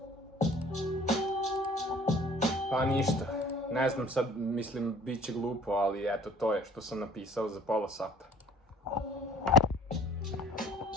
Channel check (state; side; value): normal; both; correlation 0.51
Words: Pa ništa, ne znam sad, mislim, bit će glupo, ali eto, to je što sam napisao za pola sata.